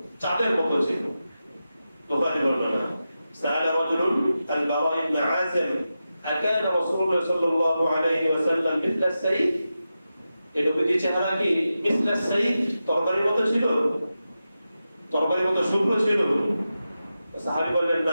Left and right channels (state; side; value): inverted; both; correlation -0.91